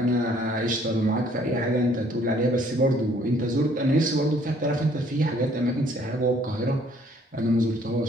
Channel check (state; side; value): normal; both; correlation 0.61